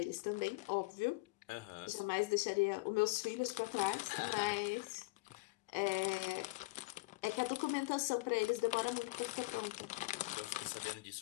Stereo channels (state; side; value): quieter; right; 24.6 dB